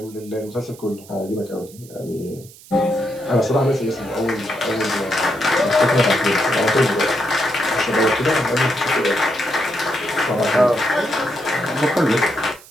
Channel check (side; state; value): right; noise; hiss, 21 dB below the sound